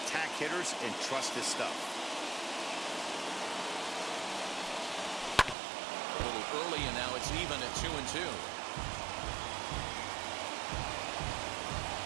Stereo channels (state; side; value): drops out; left; at 5.6 s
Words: hitters and trust his stuff. A little early, and now it's even at 2-2.